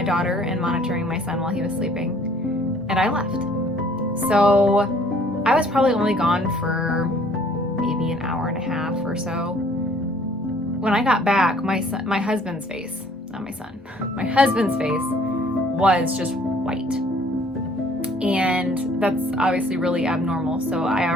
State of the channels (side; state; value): both; normal; correlation 0.57